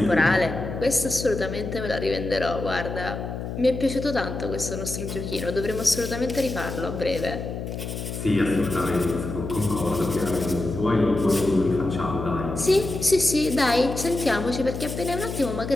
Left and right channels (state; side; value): noise; left; hum, 6 dB below the sound